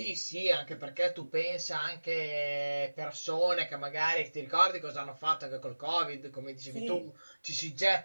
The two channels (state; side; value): inverted; both; correlation -1.00